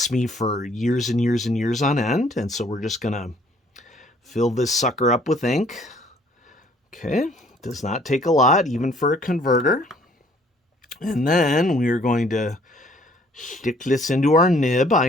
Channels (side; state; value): both; normal; correlation 0.60